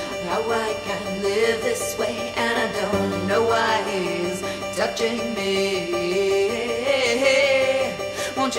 how I can live this way, and I don't know why he's touching me. Won't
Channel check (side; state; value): both; identical; correlation 1.00